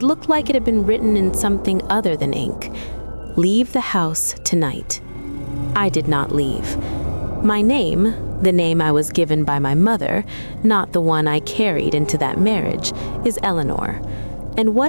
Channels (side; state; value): both; inverted; correlation -1.00